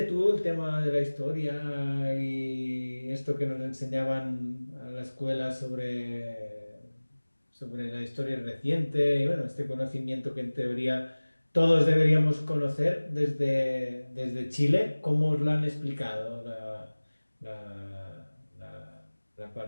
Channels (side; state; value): both; inverted; correlation -1.00